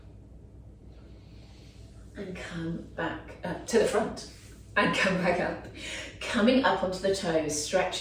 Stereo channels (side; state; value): both; identical; correlation 1.00